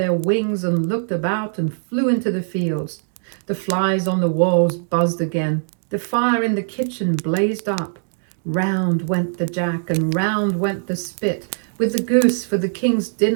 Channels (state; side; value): silent; left; digital silence